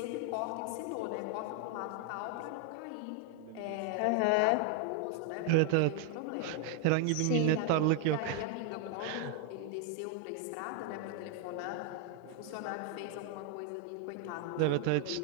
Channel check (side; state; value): both; different; correlation 0.00